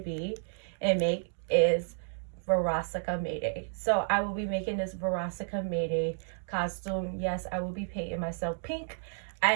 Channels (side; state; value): left; silent; digital silence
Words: and make is Verosika Mayday. So I will be making this Verosika Mayday costume. Yes, I will be painting myself pink. I